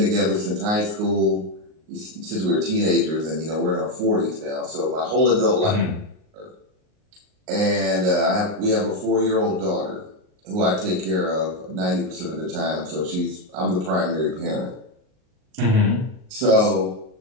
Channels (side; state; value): left; late; 38 ms